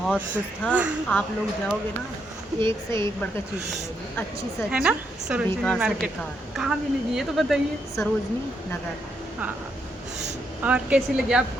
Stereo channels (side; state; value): both; normal; correlation 0.78